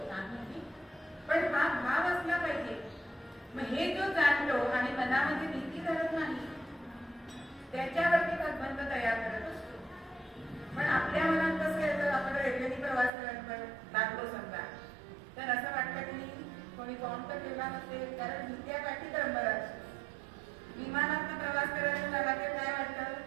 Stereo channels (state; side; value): drops out; left; at 13.1 s